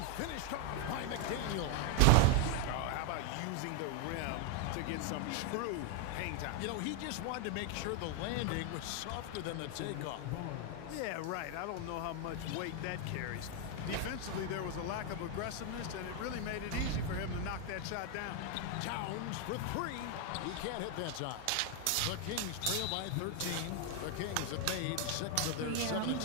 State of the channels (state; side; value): different; both; correlation 0.01